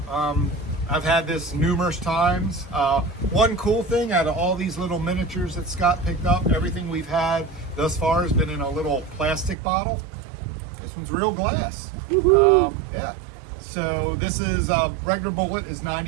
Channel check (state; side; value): drops out; left; at 9.6 s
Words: I've had this numerous times. One cool thing out of all these little miniatures that Scott picked up, everything we've had thus far has been in a little plastic bottle. This one's real glass. Yeah. So this is regular Bullet is